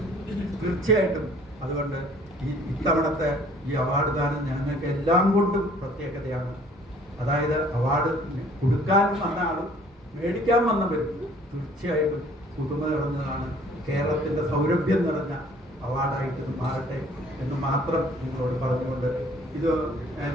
തീർച്ചയായിട്ടും അതുകൊണ്ട് ഇത്തവണത്തെ ഈ അവാർഡ് ദാനം ഞങ്ങൾക്ക് എല്ലാം കൊണ്ടും പ്രത്യേകതയാണ്. അതായത് അവാർഡ് കൊടുക്കാൻ വന്ന ആളും മേടിക്കാൻ വന്നവരും തീർച്ചയായിട്ടും പുതുമ നിറഞ്ഞതാണ്. കേരളത്തിൻ്റെ സൗരഭ്യം നിറഞ്ഞ അവാർഡായിട്ട് മാറട്ടെ എന്ന് മാത്രം നിങ്ങളോട് പറഞ്ഞുകൊണ്ട്, ഇത്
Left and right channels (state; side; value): normal; both; correlation 0.55